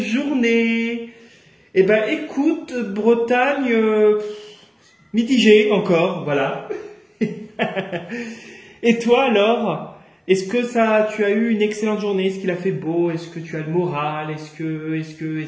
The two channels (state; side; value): identical; both; correlation 1.00